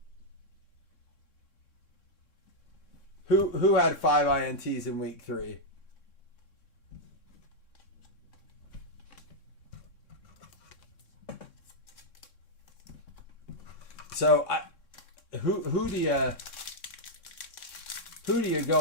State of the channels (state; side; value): late; right; 3.6 ms